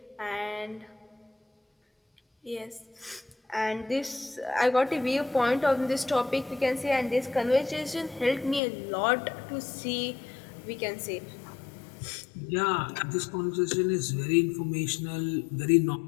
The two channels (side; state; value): right; drops out; at 8.6 s